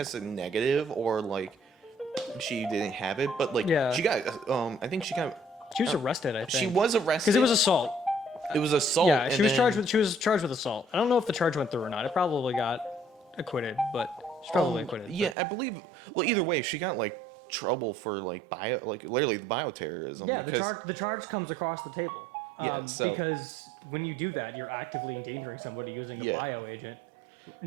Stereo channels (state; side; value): drops out; left; at 15.4 s